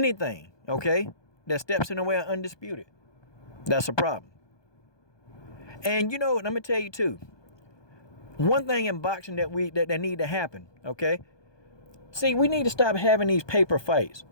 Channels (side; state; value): right; late; 1.2 ms